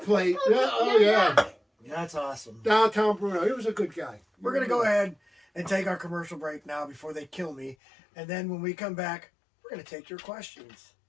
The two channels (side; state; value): right; drops out; at 7.8 s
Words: that. plate. Yeah, oh yeah. That's awesome. Downtown Bruno. He was a good guy. We're going to go ahead and take our commercial break now before they kill me. And then when we come back, we're going to take your questions.